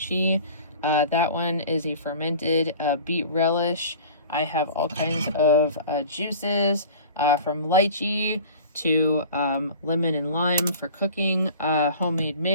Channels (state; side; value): inverted; both; correlation -0.41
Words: That one is a fermented beet relish. I have all kinds of juices from lychee to lemon and lime for cooking, homemade